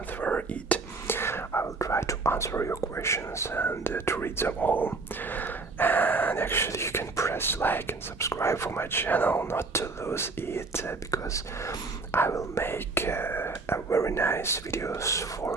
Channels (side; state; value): left; quieter; 3.8 dB